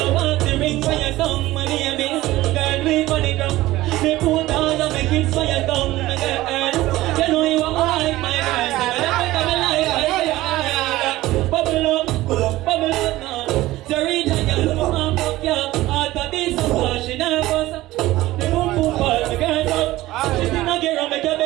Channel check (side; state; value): left; quieter; 17.0 dB